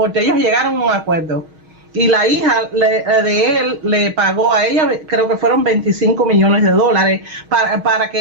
ellos llegaron a un acuerdo. Y la hija de él le pagó a ella, creo que fueron 25 millones de dólares para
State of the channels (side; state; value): left; late; 6.4 ms